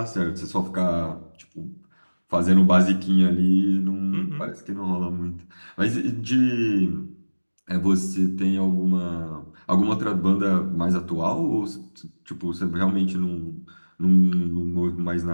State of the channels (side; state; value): both; inverted; correlation -1.00